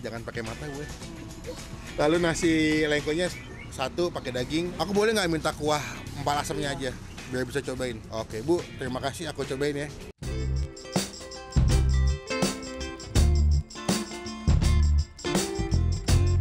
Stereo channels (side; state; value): both; identical; correlation 1.00